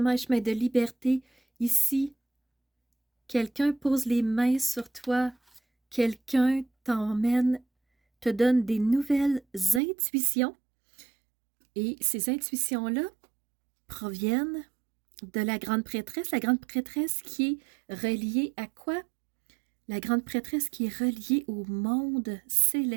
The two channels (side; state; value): left; drops out; at 9.8 s